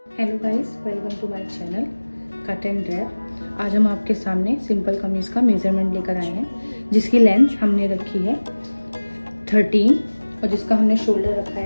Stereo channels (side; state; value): both; inverted; correlation -1.00